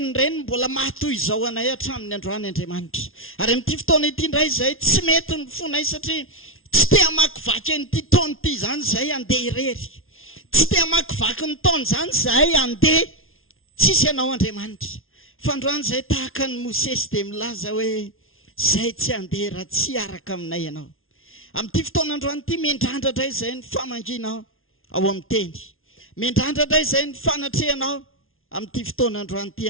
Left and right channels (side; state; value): right; late; 0.61 ms